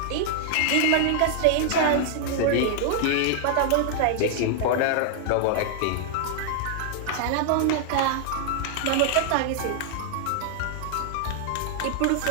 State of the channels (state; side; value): different; both; correlation -0.01